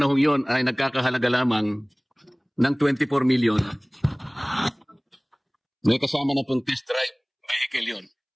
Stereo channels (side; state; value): both; identical; correlation 1.00